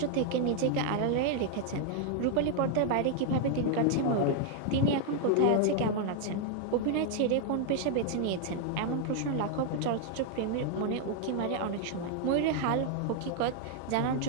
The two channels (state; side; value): different; both; correlation 0.00